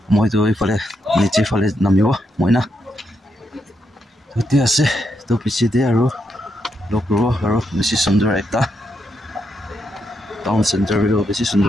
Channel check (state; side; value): normal; both; correlation 0.81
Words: মইতো ইফালে নিচে ফালে নামিব মই না উঠি আছে তো পিছতে আৰু লগ কৰিব আৰু বেছি সুন্দৰ এটা টাউন চেণ্টাৰ বেছি